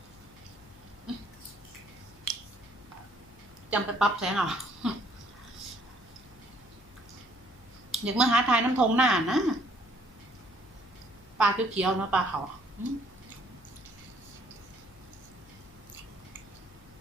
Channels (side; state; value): left; noise; hum, 24 dB below the sound